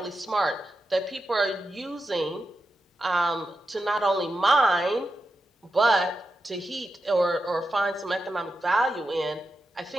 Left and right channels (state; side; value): normal; both; correlation 0.89